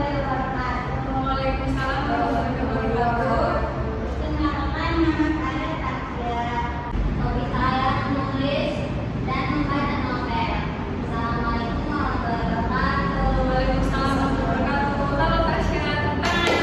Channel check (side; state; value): both; identical; correlation 1.00